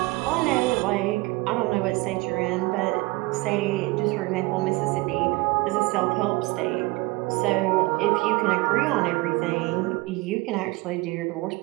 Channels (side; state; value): left; quieter; 23.1 dB